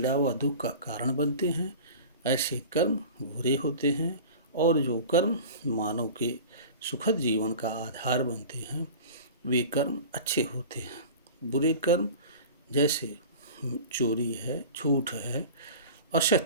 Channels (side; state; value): both; inverted; correlation -0.36